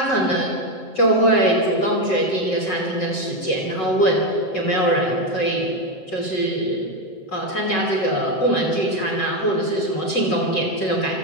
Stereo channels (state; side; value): late; right; 7.8 ms